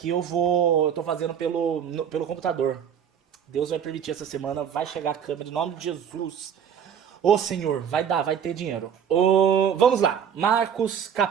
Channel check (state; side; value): quieter; left; 8.2 dB